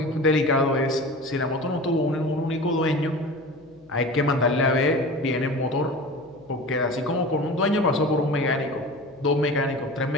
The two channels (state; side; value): noise; left; hum, 29 dB below the sound